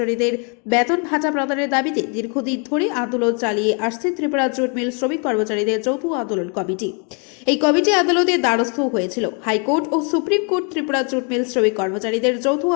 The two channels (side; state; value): right; quieter; 37.2 dB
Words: বেতন ভাতা প্রদানের দাবিতে দীর্ঘদিন ধরে আন্দোলন চালিয়ে আসছে ত্রিপুরা জুট মিল শ্রমিক কর্মচারীদের যৌথ আন্দোলন কমিটি। এই কমিটি আদালতের দ্বারস্থ হয়েছিল। হাইকোর্ট ও supreme court Tripura jute mill শ্রমিক কর্মচারীদের যৌথ